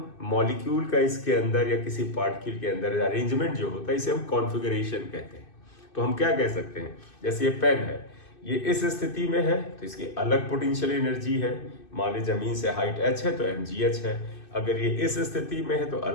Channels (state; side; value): late; right; 2.6 ms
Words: मॉलिक्यूल का इसके अंदर या किसी पार्टिकल के अंदर अरेंजमेंट जो होता है इसे हम कॉन्फ़िगरेशन कहते हैं। तो हम क्या कह सकते हैं, जैसे ये पेन है, ये इस स्थिति में है तो इसकी अलग पोटेंशियल एनर्जी है। मान ली जमीन से हाइट h है तो mgh है। अगर ये इस स्थिति में है तो